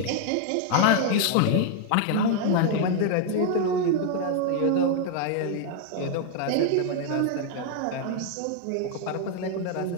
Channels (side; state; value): both; different; correlation 0.00